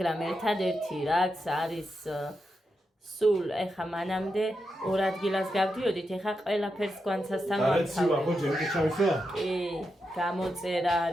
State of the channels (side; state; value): both; normal; correlation 0.86